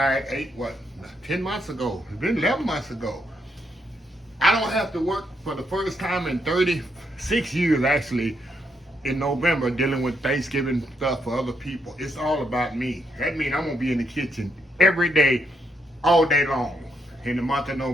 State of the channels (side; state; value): both; normal; correlation 0.77